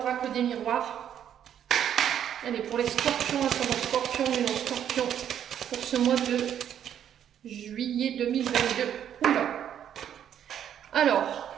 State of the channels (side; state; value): left; quieter; 9.7 dB